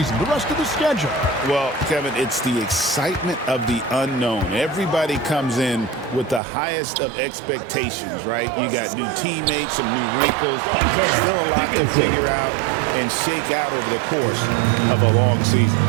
the rest of the schedule? Well, Kevin, it's the excitement of the unknown. Everybody comes in with the highest of expectations, right? You got new teammates, some new wrinkles, still a lot to figure out and shake out over the course of a long season.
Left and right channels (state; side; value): drops out; left; at 6.4 s